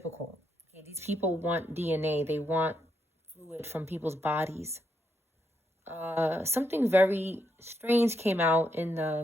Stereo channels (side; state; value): both; normal; correlation 0.79